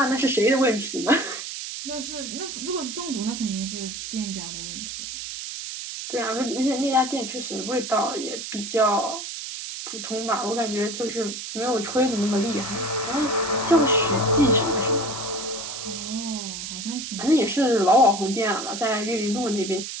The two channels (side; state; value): right; noise; hiss, 7 dB below the sound